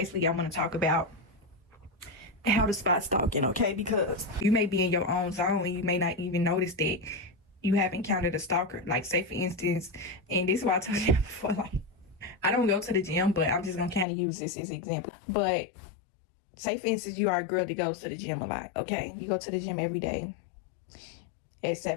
I want to talk about how to spot stalking, okay? Because you may be in your own zone and you may not even notice that you have encountered a stalker. Like, say for instance, and this is why I told you before, like, I don't go to the gym, but I'm just gonna kind of use this as an example. But say for instance, you are a girl that goes to the gym a lot, okay? You go to the gym every day at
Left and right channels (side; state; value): right; drops out; at 14.1 s